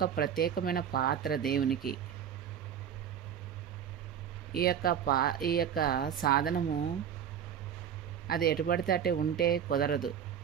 ప్రత్యేకమైన పాత్ర దేవునికి. ఈ యొక్క సాధనము అది ఎటుపడితే అటే ఉంటే కుదరదు.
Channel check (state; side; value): quieter; left; 8.8 dB